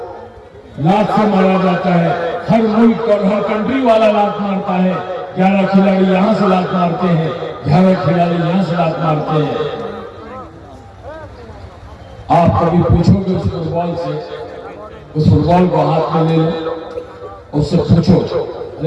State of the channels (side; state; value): both; identical; correlation 1.00